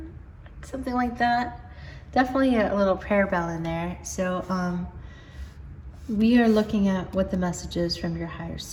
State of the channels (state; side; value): identical; both; correlation 1.00